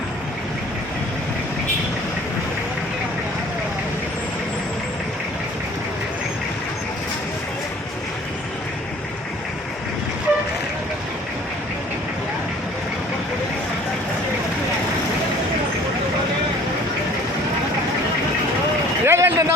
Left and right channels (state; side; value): normal; both; correlation 0.51